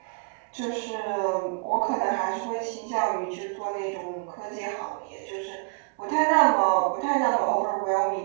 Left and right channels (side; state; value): left; quieter; 35.0 dB